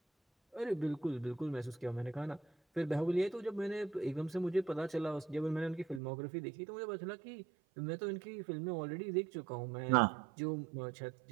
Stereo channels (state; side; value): drops out; left; at 6.0 s